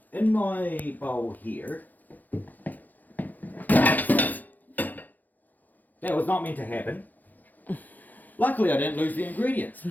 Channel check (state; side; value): late; right; 0.083 ms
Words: in my bowl here, that was not meant to happen. Luckily I didn't lose the ingredients.